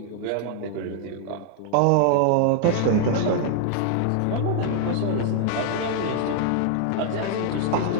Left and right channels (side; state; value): both; different; correlation 0.00